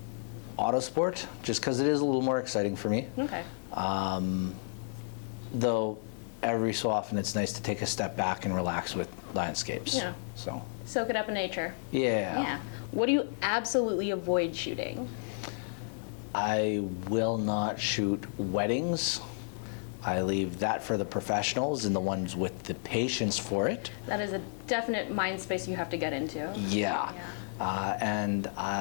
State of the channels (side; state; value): right; silent; digital silence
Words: autosport just because it is a little more exciting for me. Okay. Though every so often it's nice to take a step back and relax with landscapes. Yeah. So. Soak it up in nature. Yeah. Yeah. What do you absolutely avoid shooting? I will not shoot weddings. I leave that for the professionals and the ones with the patience for it. That is a definite mind space you have to get into. Yeah.